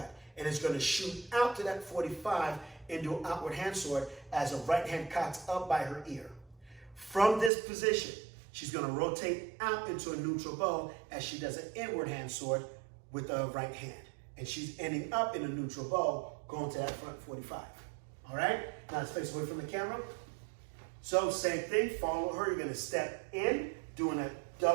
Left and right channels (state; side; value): drops out; left; at 7.5 s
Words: and is going to shoot out to that 45 into an outward hand sword as a right hand cocks up by her ear. From this position, she's going to rotate out into a neutral bow as she does an inward hand sword with the right hand. And she's ending up in a neutral bow going to that front 45. All right? Now let's face away from the camera. So same thing, follow her. You're going to step in, doing a